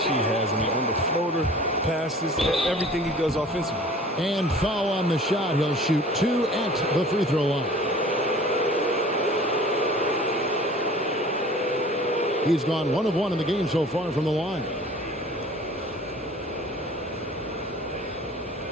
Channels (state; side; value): normal; both; correlation 0.46